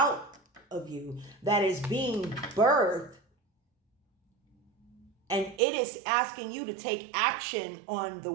of you, that is being birthed. And it is asking you to take action on the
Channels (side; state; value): left; drops out; at 5.6 s